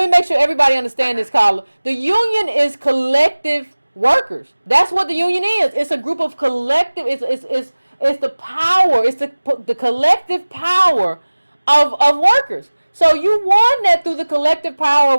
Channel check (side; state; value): both; inverted; correlation -1.00